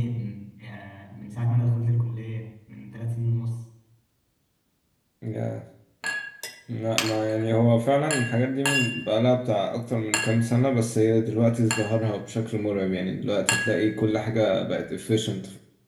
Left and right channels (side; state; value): both; identical; correlation 1.00